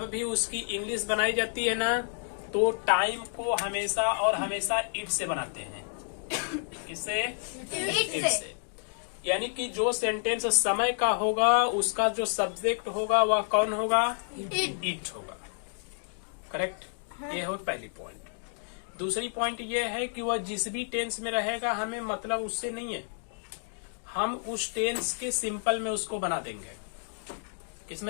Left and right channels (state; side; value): silent; right; digital silence